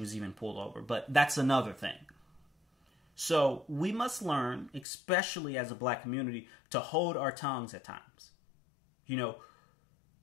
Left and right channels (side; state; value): right; drops out; at 4.9 s